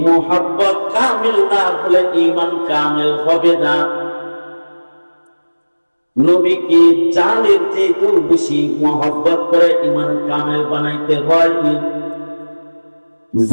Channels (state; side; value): inverted; both; correlation -1.00